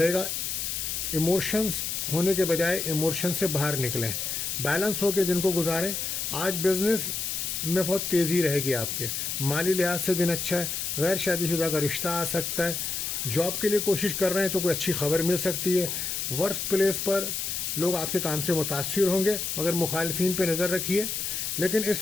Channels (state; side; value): noise; left; hiss, 2 dB below the sound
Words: گا. ایموشنس ہونے کے بجائے ایموشن سے باہر نکلیں, بیلنس ہو کے دن کو گزاریں. آج بزنس میں بہت تیزی رہے گی آپ کے, مالی لحاظ سے دن اچھا ہے. غیر شادی شدہ کا رشتہ آ سکتا ہے. جاب کے لیے کوشش کر رہے ہیں تو کوئی اچھی خبر مل سکتی ہے. ورک پلیس پر لوگ آپ کے کام سے متاثر ہوں گے, مگر مخالفین پہ نظر رکھیے. لیکن